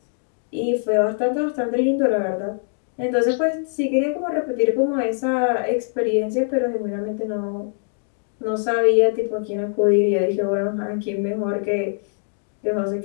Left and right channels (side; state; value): right; silent; digital silence